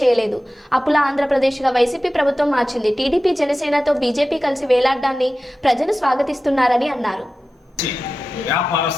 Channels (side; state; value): both; normal; correlation 0.94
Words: చేయలేదు. అప్పుల ఆంధ్రప్రదేశ్గా వైసీపీ ప్రభుత్వం మార్చింది. టీడీపీ జనసేనతో బీజేపీ కలిసి వేలాడడాన్ని ప్రజలు స్వాగతిస్తున్నారని అన్నారు.